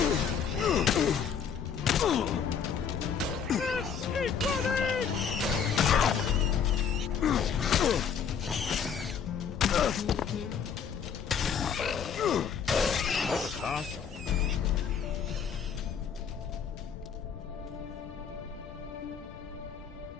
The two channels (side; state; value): right; quieter; 7.1 dB